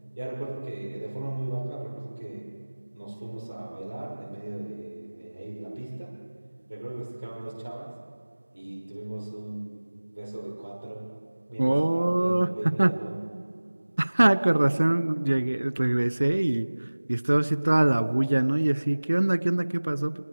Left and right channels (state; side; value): inverted; both; correlation -1.00